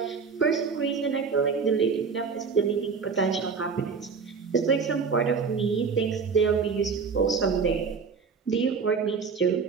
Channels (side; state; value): left; quieter; 5.4 dB